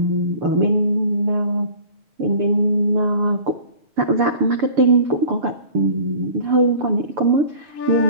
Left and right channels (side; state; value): left; late; 6.9 ms